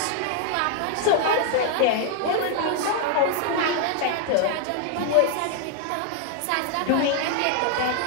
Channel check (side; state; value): both; different; correlation 0.00